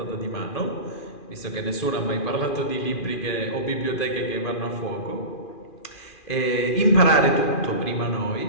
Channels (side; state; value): right; late; 2.4 ms